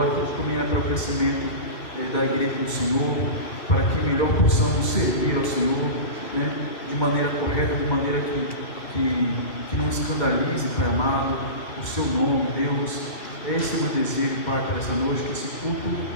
tudo também é para o crescimento da igreja do Senhor, para que melhor possamos servir ao Senhor, de maneira correta, de maneira que não escandalize, Pai amado, o Seu nome, Deus. Esse é o meu desejo, Pai, para essa noite, que esse culto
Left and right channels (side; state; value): right; late; 2.2 ms